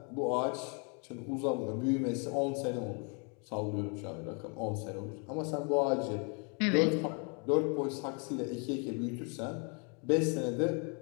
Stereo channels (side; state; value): right; quieter; 36.5 dB